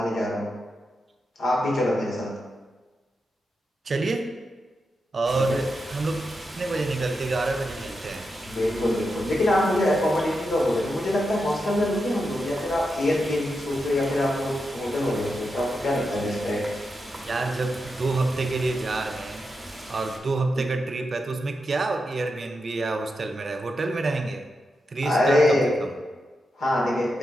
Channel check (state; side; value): normal; both; correlation 0.87